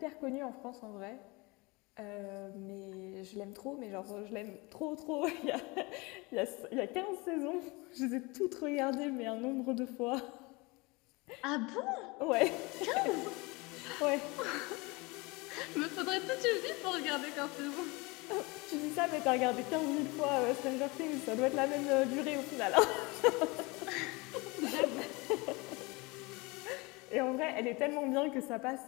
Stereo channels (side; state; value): right; quieter; 25.6 dB